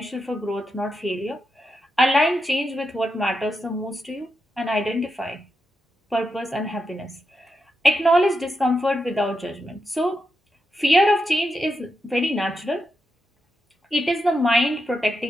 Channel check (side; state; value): both; normal; correlation 0.85